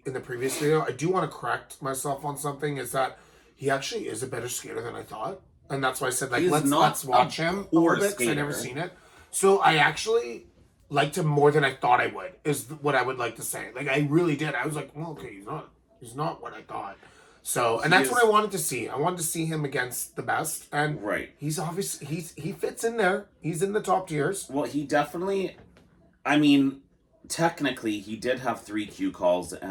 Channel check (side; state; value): both; identical; correlation 1.00